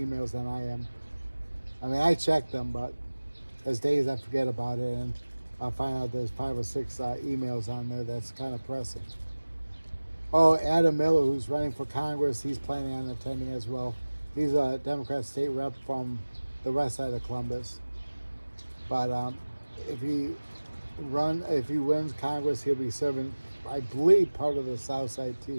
than I am. I mean, I check them, but there's days I forget about it, and I'll find out there's 5 or 6 emails on there that's kind of pressing. Oh, Adam Miller, who's running for Congress, he's planning on attending as well. He's a Democrat state rep from the west side of Columbus. But if he wins Congress, he'll be serving, I believe, part of the south side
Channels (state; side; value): inverted; both; correlation -1.00